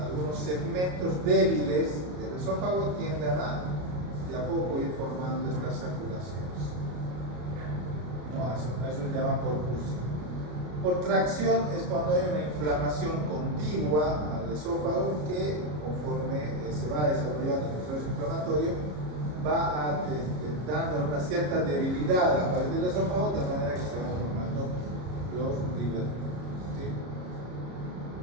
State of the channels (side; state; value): left; late; 33 ms